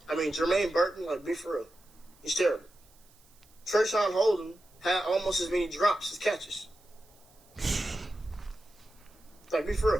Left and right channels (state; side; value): noise; right; hiss, 29 dB below the sound